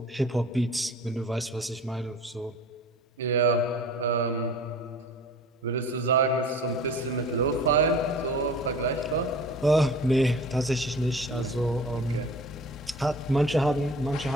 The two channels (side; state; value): both; normal; correlation 0.42